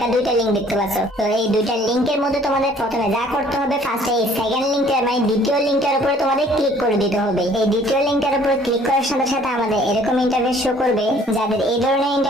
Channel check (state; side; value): normal; both; correlation 0.57